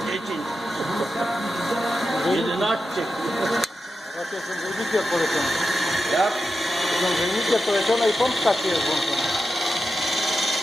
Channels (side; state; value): both; normal; correlation 0.90